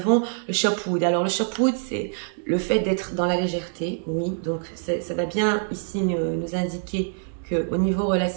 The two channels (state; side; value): silent; left; 62 dB below the other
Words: le Shopwood. Alors, le Shopwood, c'est le fait d'être dans la légèreté, oui. Donc, ça va bien ici nous indiquer qu'au niveau